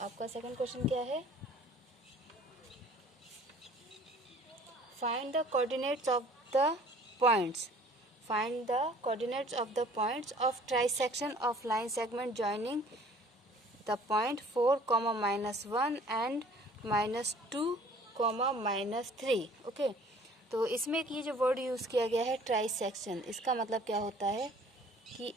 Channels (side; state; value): both; normal; correlation 0.52